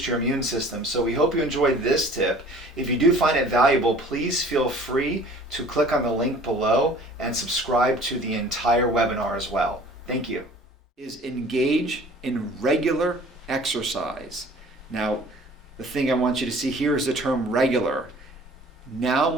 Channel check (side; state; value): both; normal; correlation 0.49